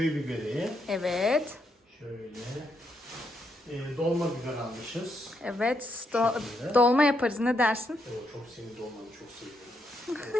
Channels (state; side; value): normal; both; correlation 0.79